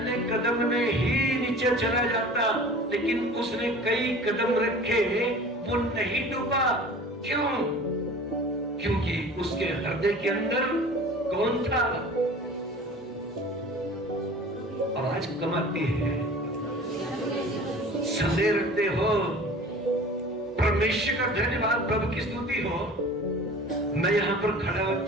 कदम में ही नीचे चला जाता, लेकिन उसने कई कदम रखे, वो नहीं डूबा। क्यों? क्योंकि उसके हृदय के अंदर कौन था? आवाज कम आती है, संदेह रखते हो? परमेश्वर का धन्यवाद, प्रभु की स्तुति हो। मैं यहाँ पर खड़ा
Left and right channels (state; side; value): normal; both; correlation 0.42